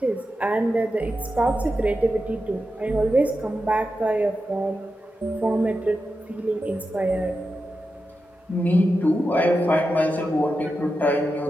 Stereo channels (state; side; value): normal; both; correlation 0.90